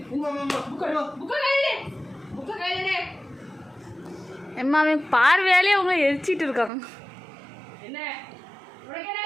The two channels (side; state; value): left; drops out; at 6.7 s